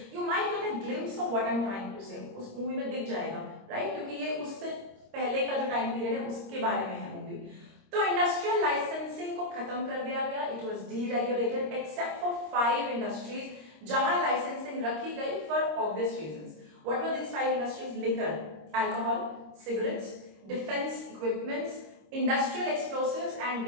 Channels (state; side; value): late; left; 26 ms